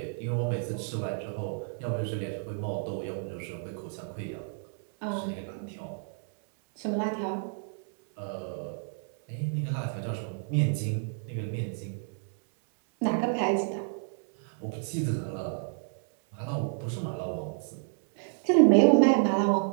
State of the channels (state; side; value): silent; left; 58 dB below the other